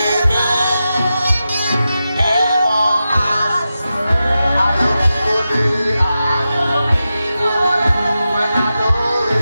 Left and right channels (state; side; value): inverted; both; correlation -0.91